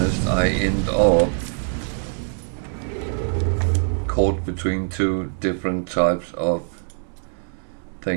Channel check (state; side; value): silent; left; digital silence